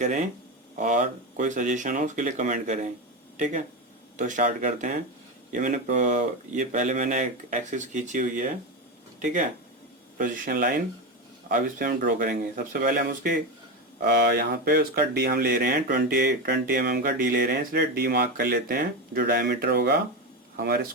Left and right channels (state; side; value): normal; both; correlation 0.16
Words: और कोई सजेशन हो उसके लिए कमेंट करें। ठीक है, तो स्टार्ट करते हैं। ये पहले मैंने एक एक्सिस खींची हुई है। ठीक है, पोजीशन लाइन। अब इस पे हम ड्रॉ करेंगे। सबसे पहले हम उसके यहाँ पे उसका डी हम ले रहे हैं, 20 mm का डी ले रहे हैं, इसलिए डी मार्क कर लेते हैं। जो डायमीटर होगा हमारे